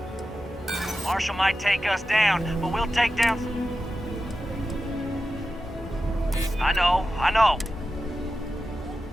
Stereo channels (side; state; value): both; normal; correlation 0.92